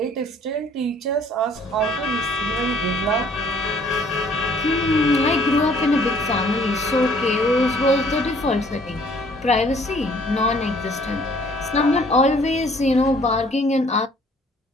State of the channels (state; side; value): normal; both; correlation 0.59